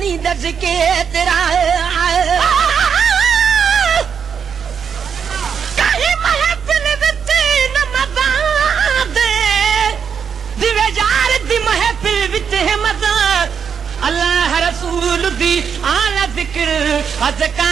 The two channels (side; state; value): left; quieter; 7.0 dB